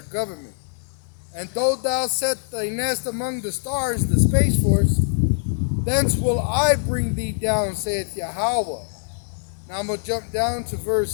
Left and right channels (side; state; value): right; silent; digital silence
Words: government. And though thou set thy nest among the stars, the Space Force, thence will I bring thee down, saith Yahweh. Now I'm going to jump down to